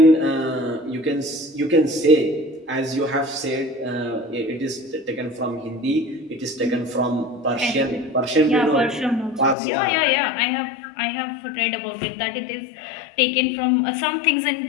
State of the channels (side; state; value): right; drops out; at 9.6 s